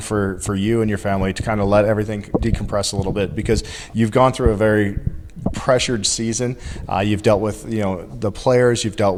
you and your family to kind of let everything decompress a little bit, because you've gone through a very pressured season. You've dealt with the players, you've dealt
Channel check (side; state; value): both; identical; correlation 1.00